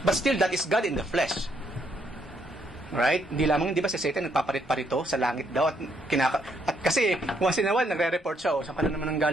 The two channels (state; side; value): normal; both; correlation 0.73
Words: But still, that is God in the flesh. Right? Hindi lamang, di ba si Satan nagpaparit-parito sa langit daw. At kasi, once in a while, nagre-report siya. Saan ka na naman ang